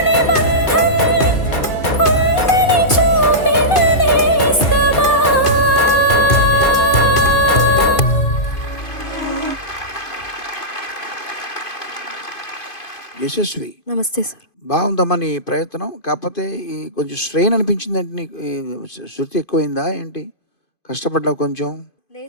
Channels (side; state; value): right; late; 2.5 ms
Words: బంధం ఉందని చూపిన నేస్తమా యశస్వి, నమస్తే సార్. బాగుందమ్మా నీ ప్రయత్నం. కాకపోతే ఈ కొంచెం స్ట్రెయిన్ అనిపించిందంటే నీకు ఈ శృతి ఎక్కువైందా ఏంటి? కష్టపడ్డావు కొంచెం?